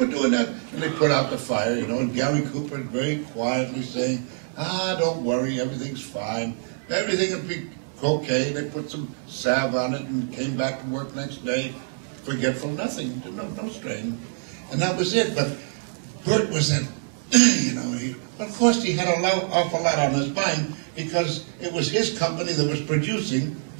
doing that? And they put out the fire, you know, and Gary Cooper very quietly saying, don't worry, everything's fine, everything will be okay. They put some salve on it and came back to work next day. Forgetful, nothing, no strain. And that was it. But Burt was that you know, but of course he had an awful lot on his mind because it was his company that was producing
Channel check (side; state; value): left; silent; digital silence